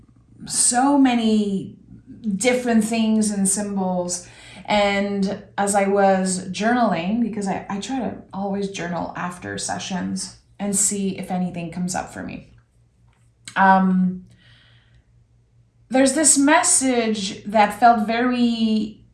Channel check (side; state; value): both; identical; correlation 1.00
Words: so many different things and symbols. And as I was journaling, because I try to always journal after sessions and see if anything comes up for me. There's this message that felt very